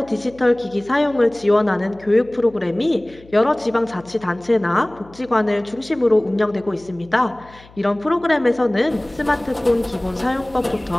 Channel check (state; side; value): noise; left; hum, 24 dB below the sound